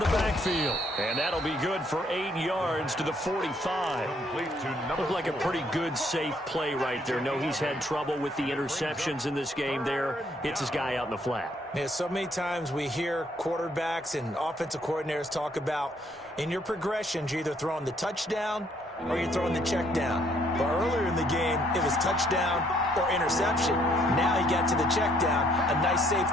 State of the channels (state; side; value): normal; both; correlation 0.67